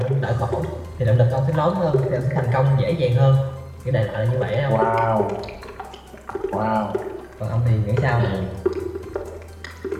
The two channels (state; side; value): identical; both; correlation 1.00